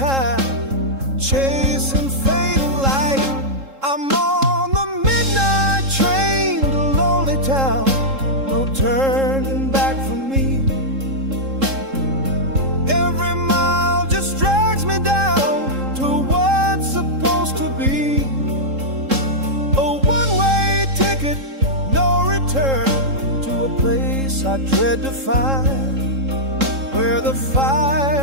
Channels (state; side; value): late; left; 3.7 ms